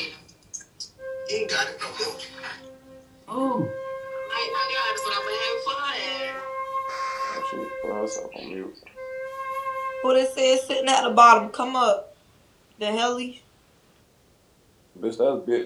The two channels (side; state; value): both; identical; correlation 1.00